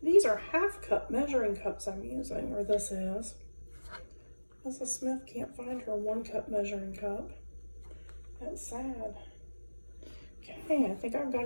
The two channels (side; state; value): both; inverted; correlation -1.00